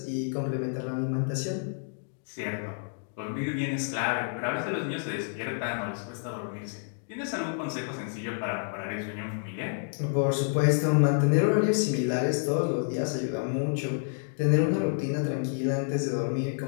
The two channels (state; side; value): silent; right; digital silence